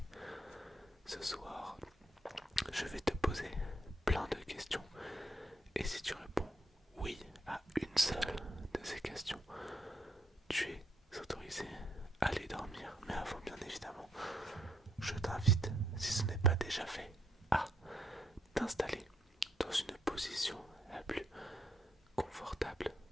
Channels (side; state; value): both; normal; correlation 0.74